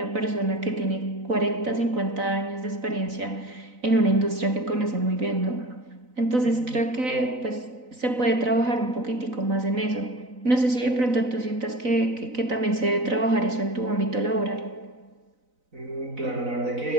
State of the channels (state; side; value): late; left; 4.0 ms